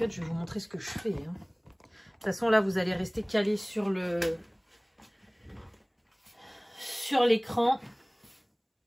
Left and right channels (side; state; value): both; identical; correlation 1.00